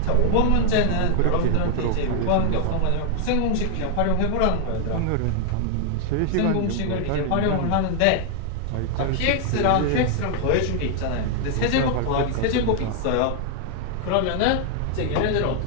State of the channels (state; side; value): different; both; correlation 0.00